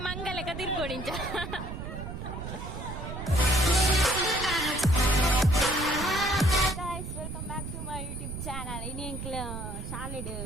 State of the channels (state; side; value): noise; right; rumble, 7 dB below the sound